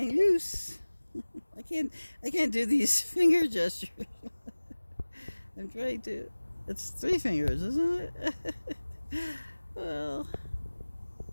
loose. I can't do these finger gestures. I'm trying to. It's 3 fingers, isn't it? Well,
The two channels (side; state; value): both; inverted; correlation -1.00